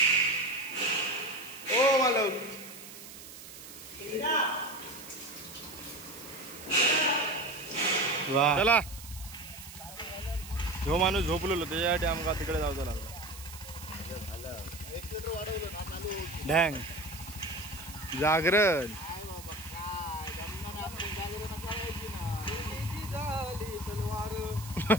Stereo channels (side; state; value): right; noise; hiss, 14 dB below the sound